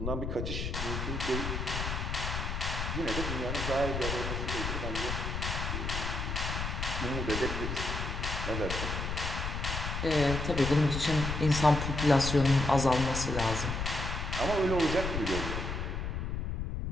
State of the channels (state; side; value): noise; left; rumble, 3 dB below the sound